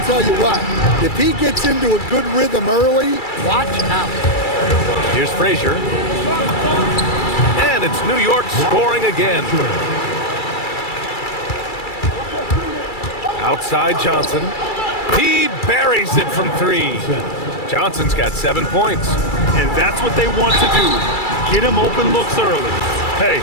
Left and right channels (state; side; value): late; right; 2.3 ms